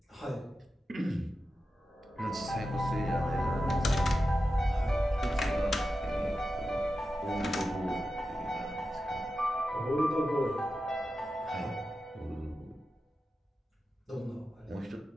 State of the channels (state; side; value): normal; both; correlation 0.91